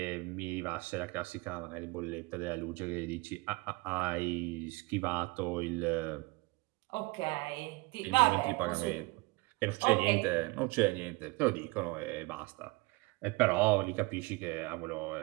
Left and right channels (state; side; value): quieter; left; 24.1 dB